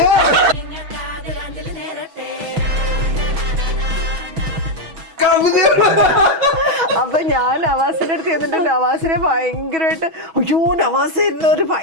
അപ്പൊ ഞാൻ നവാസിന്റെ അടുത്ത് ചെന്നിട്ട് നവാസിനെ ഭയങ്കരമായിട്ട് അയ്യോ നവാസ് ഒരു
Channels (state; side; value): late; left; 6.2 ms